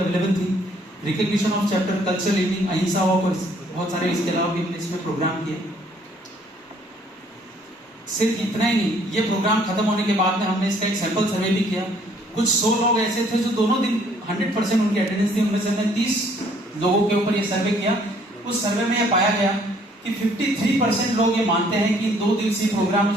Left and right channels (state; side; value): normal; both; correlation 0.62